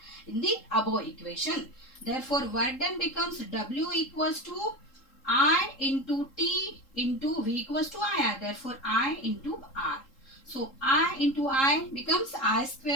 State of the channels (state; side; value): late; right; 3.7 ms